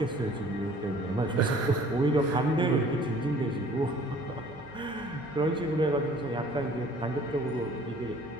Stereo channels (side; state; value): both; normal; correlation 0.53